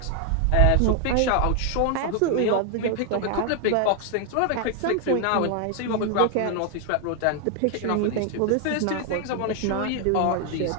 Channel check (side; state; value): both; different; correlation 0.00